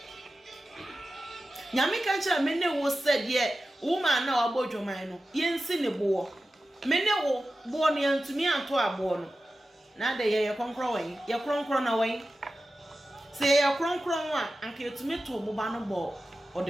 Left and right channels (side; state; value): both; normal; correlation 0.93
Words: nyame ka nche me ne wo said ye woman na obodwoman no yensi ne bo me ne wo bo no yantumi anto abo no na de ye konkro wen ye kronkro na wen say ya kronkron a anka etumi to moba no bo o